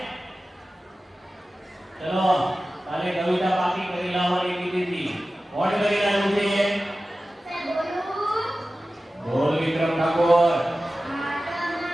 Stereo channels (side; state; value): both; normal; correlation 0.95